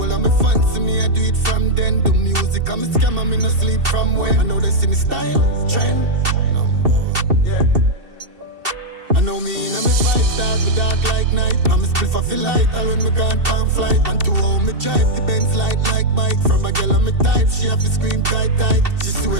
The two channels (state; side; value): late; left; 2.7 ms